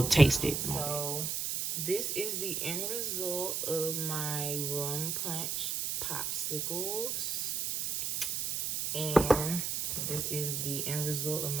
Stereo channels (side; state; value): right; noise; hiss, 1 dB below the sound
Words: taste it. So this is the end result of my rum punch popsicles. And this is the end result of